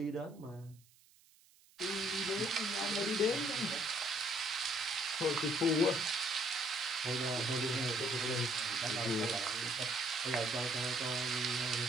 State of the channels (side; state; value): right; noise; hiss, 29 dB below the sound